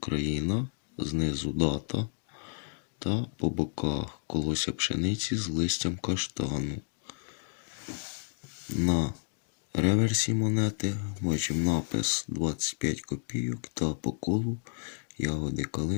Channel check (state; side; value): silent; right; digital silence